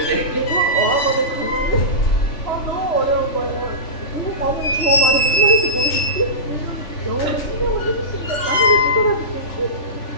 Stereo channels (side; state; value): right; late; 3.4 ms